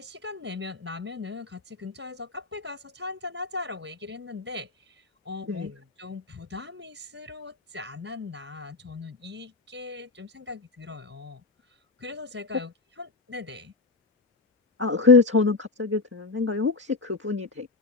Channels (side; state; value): right; quieter; 3.8 dB